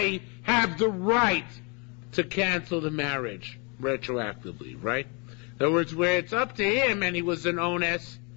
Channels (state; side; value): quieter; right; 32.7 dB